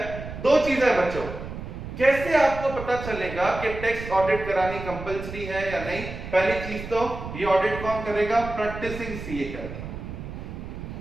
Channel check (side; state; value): right; noise; rumble, 9 dB below the sound